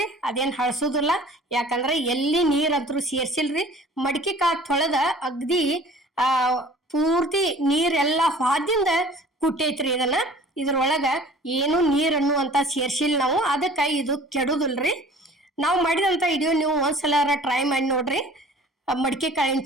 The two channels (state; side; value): normal; both; correlation 0.48